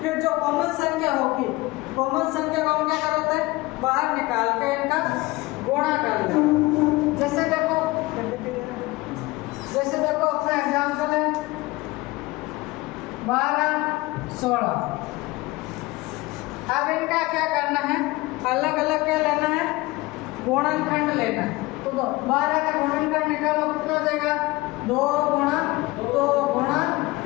फिर जो कॉमन संख्या होगी, कॉमन संख्या को हम क्या करते हैं? बाहर निकाल के इनका गुणा कर लें। जैसे देखो अपना एग्जाम्पल है 12, 16। अब इनका क्या करना है? अलग अलग क्या लेना है? गुणनखंड लेना है। तो 12 का गुणनखंड निकालो, कितना देगा? 2 गुणा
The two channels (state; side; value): quieter; right; 21.2 dB